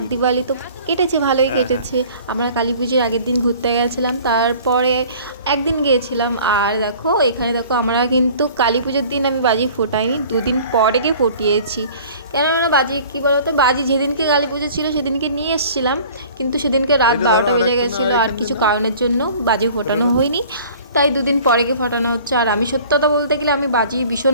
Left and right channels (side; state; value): both; inverted; correlation -0.48